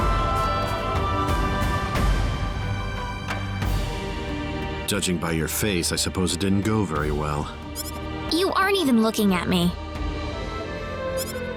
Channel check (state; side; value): identical; both; correlation 1.00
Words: Judging by your face, I suppose it didn't go very well. You aren't even looking at me.